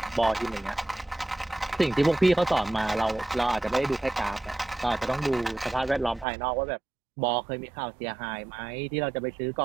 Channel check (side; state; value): left; drops out; at 6.2 s